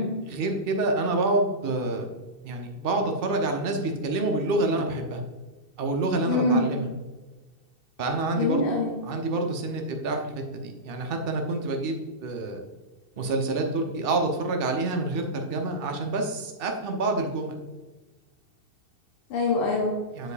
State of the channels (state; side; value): late; right; 2.7 ms